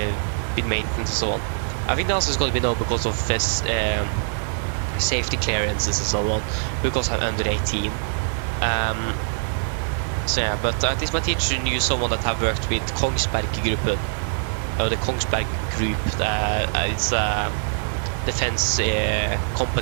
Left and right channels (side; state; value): left; silent; digital silence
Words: maintenance and so on. I think the answer is going to be no because of this, safety clearances and so on, because I'm under 18. So yeah, but at least my teacher knew someone that have worked with Kongsberg-gruppen, or the Kongsberg Group. It's a defense